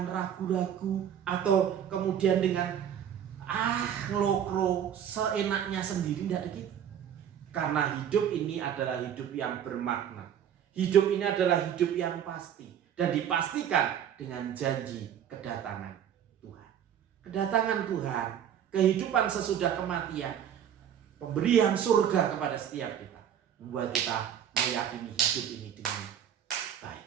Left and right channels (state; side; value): quieter; left; 9.3 dB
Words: ragu-ragu atau kemudian dengan ngelokro seenaknya sendiri, tidak ada gitu. Karena hidup ini adalah hidup yang bermakna. Hidup ini adalah hidup yang pasti dan dipastikan dengan janji kedatangan Tuhan. Kedatangan Tuhan, kehidupan sesudah kematian, pemberian surga kepada setiap kita, membuat kita meyakini hidup ini dengan baik.